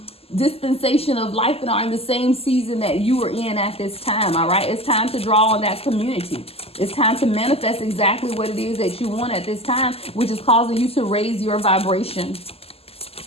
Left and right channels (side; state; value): right; late; 0.29 ms